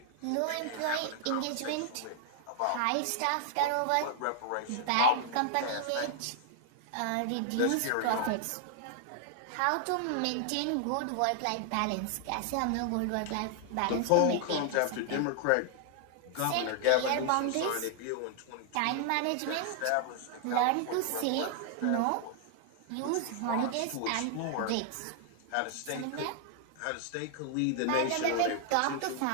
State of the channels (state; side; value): different; both; correlation 0.00